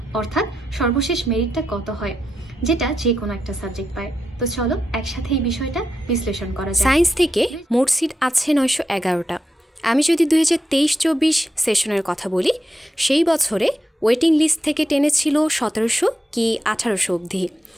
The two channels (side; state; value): both; normal; correlation 0.86